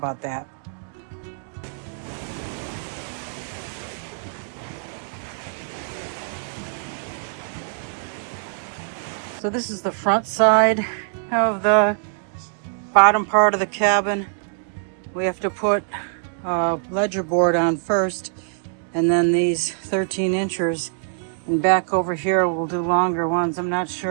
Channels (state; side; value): silent; left; digital silence